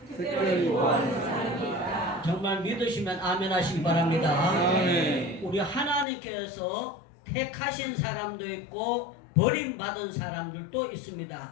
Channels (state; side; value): drops out; right; at 6.1 s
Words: 정말 믿으시면 아멘 하시기 바랍니다. 아멘. 우리 하나님께서 택하신 사람도 있고 버림받은 사람들도